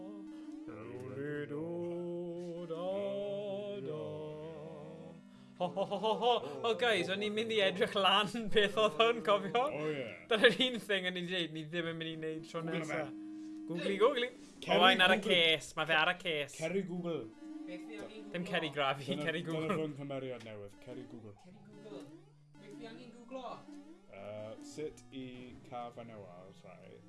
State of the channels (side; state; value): both; identical; correlation 1.00